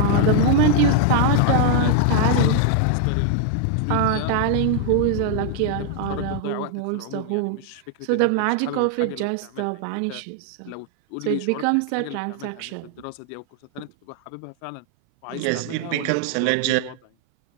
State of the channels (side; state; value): both; different; correlation 0.00